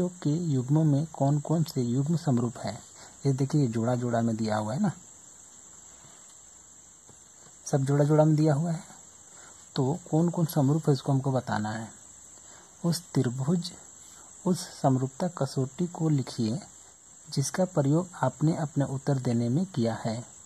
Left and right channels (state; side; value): identical; both; correlation 1.00